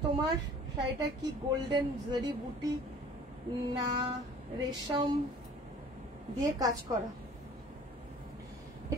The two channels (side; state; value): both; normal; correlation 0.48